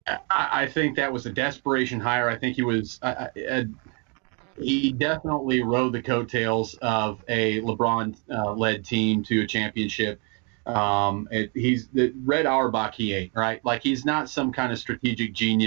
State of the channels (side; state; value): left; quieter; 34.9 dB